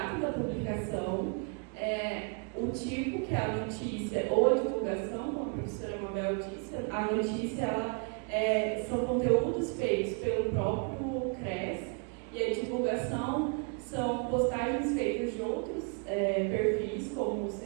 da publicação, o tipo, que é a notícia ou a divulgação, como a professora Mabel disse. A notícia são conteúdos feitos pelo próprio CRES e a divulgação são postagens feitas de outros perfis, como o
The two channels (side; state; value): left; quieter; 38.3 dB